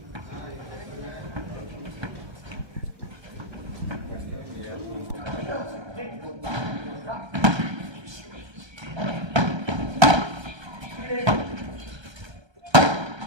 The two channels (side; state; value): left; late; 1.3 ms